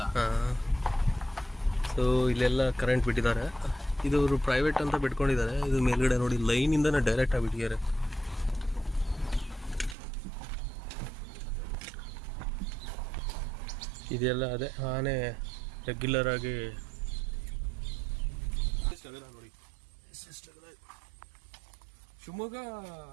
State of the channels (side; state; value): left; drops out; at 10.0 s